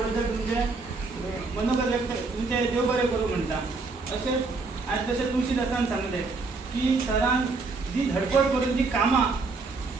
तुमचे मनोगत व्यक्त तुमचे देव बरें करूं म्हणटा. तशेंच आयज तशें तुळशीदासान सांगलें की सरान जी धडपड करून जी कामां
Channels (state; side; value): quieter; left; 3.9 dB